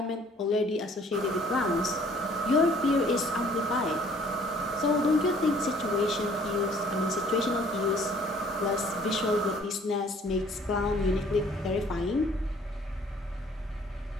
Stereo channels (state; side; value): normal; both; correlation 0.57